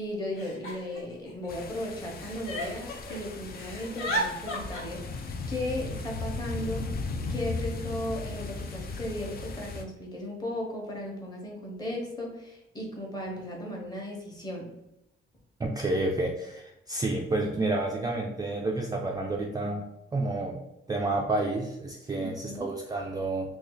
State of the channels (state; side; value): normal; both; correlation 0.53